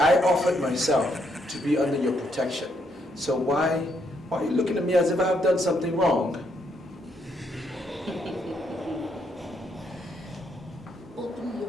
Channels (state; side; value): normal; both; correlation 0.74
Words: offered myself to be under your protection. So why are you looking at me as if I've done something wrong? Open